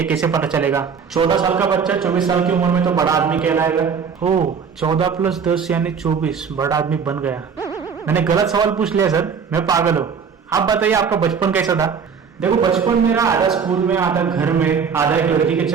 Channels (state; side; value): quieter; left; 6.3 dB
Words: कैसे पता चलेगा? 14 साल का बच्चा 24 साल की उम्र में तो बड़ा आदमी कहलाएगा। ओ, 14 + 10 यानी 24, बड़ा आदमी बन गया। मैंने गलत सवाल पूछ लिया सर, मैं पागल हूँ। आप बताइए आपका बचपन कैसा था? देखो बचपन मेरा आधा स्कूल में, आधा घर में, आधा एक लड़की के